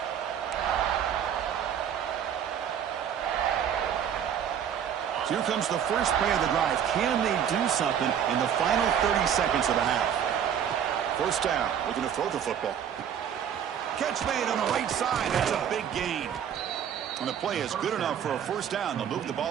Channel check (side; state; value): left; quieter; 8.8 dB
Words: So here comes the first play of the drive. Can they do something in the final 30 seconds of the half? 1st down, looking to throw the football. Catch made on the right side. That's a big gain. And the play is good enough for a 1st down. They'll move the